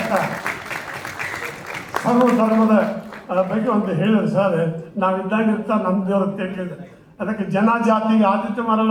ಸರ್ವ ಧರ್ಮದ ಬಗ್ಗೆ ಒಂದು ಹೇಳಿದ್ರು ಸರ್. ನಾವಿದ್ದಾಗಿರ್ತಾ ನಮ್ಮ ದೇವ್ರ ಕೇಳಿದ್ರೆ ಅದಕ್ಕೆ ಜನ ಜಾತಿಗೆ ಆದಿತ್ಯ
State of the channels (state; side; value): identical; both; correlation 1.00